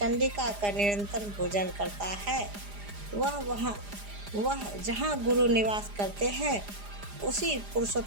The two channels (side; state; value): left; late; 4.9 ms